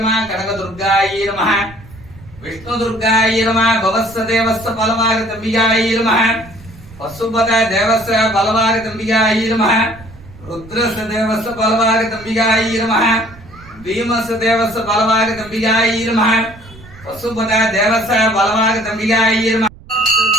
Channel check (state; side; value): noise; right; rumble, 20 dB below the sound